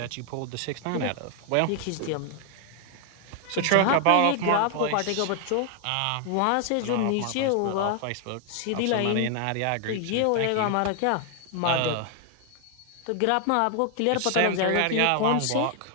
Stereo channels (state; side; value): different; both; correlation 0.00